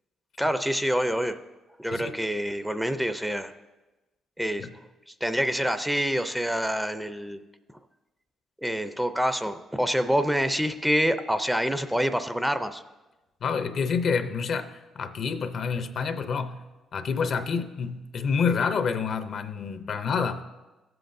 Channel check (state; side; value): normal; both; correlation 0.87